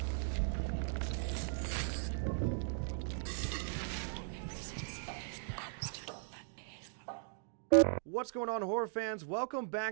What's going on, horror fans? Welcome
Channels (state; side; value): silent; left; digital silence